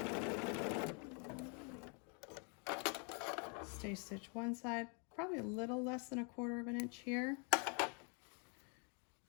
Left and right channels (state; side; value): quieter; right; 37.7 dB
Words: Stay stitch one side, probably a little less than 1/4 inch here.